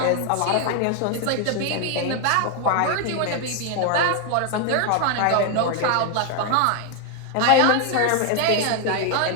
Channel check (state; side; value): different; both; correlation 0.01